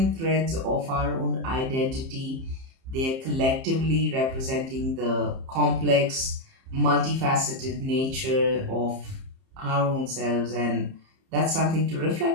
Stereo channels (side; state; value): left; late; 30 ms